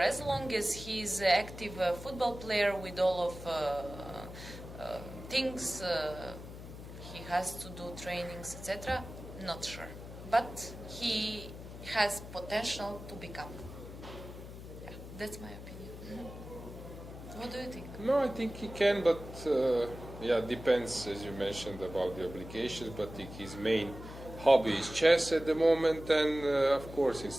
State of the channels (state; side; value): noise; left; hum, 12 dB below the sound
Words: long as he's an active football player with all of things he has to do, trainings, etc., not sure. But he has potential to become. Yeah, that's my opinion. What do you think? No, I think he can, but depends, as you mentioned, about the obligations. But his main hobby is chess at the moment, and of course,